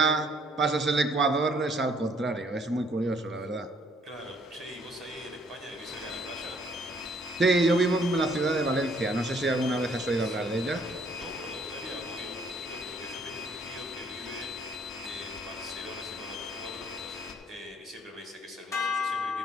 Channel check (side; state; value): both; normal; correlation 0.64